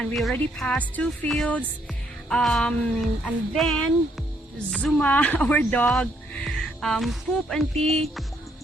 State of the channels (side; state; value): both; normal; correlation 0.71